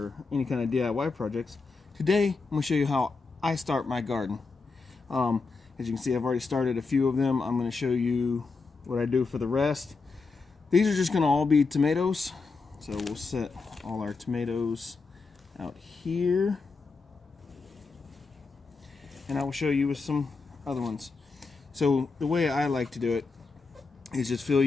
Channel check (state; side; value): quieter; right; 4.3 dB